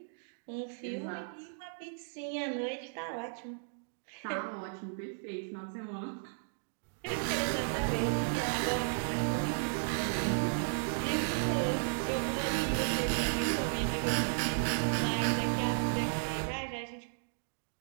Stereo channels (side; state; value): left; silent; digital silence